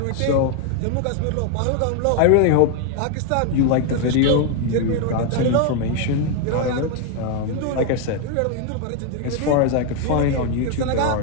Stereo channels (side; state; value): both; different; correlation 0.01